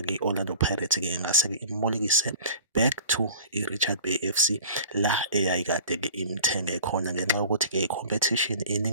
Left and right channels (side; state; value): both; inverted; correlation -0.43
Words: i-Orlando Pirates-ke ingase-ke imbolekise back to i-Richards Bay FC la eyayikade-ke imthenge khona, ngenxa yokuthi-ke i-competition